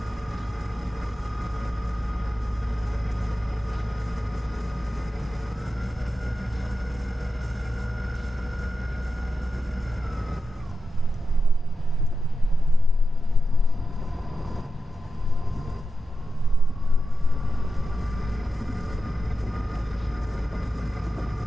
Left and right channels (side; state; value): both; normal; correlation 0.90